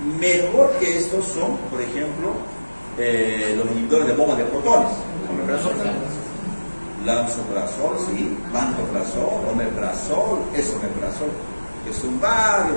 mejor que estos son, por ejemplo, los inhibidores de bombas de protones. Lansoprazol, sí, pantoprazol, omeprazol, esomeprazol, que son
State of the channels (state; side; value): inverted; both; correlation -1.00